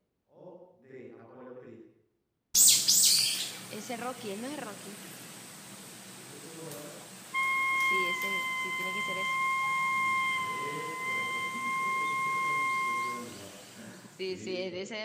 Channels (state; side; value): identical; both; correlation 1.00